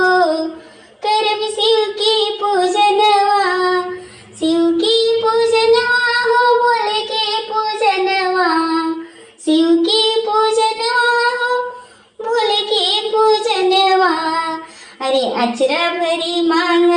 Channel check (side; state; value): both; identical; correlation 1.00